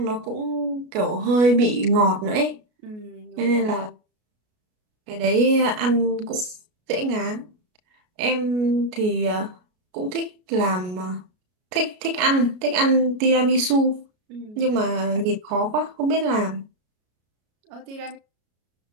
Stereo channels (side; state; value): left; late; 33 ms